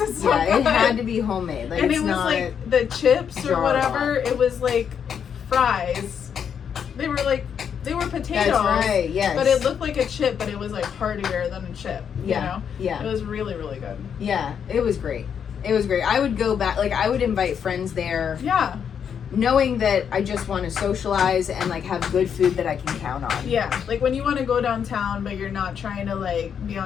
so good. It had to be homemade. Like, and it was like the chips or whatever. It was like fries. They were potatoes. That's right, yes. But it looked like a chip, but it was like heartier than a chip. You know? Yeah. It was really, really good. Yeah, it was great. It was great. I would go back, like I would invite friends there. Yeah. Knowing that I just want to socialize and like have good food that I can count on. Yeah. Like when you want to go downtown, but you're not trying to like be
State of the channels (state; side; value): quieter; right; 7.7 dB